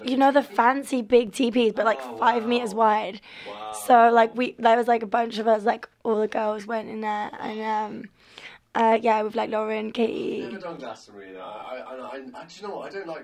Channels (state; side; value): identical; both; correlation 1.00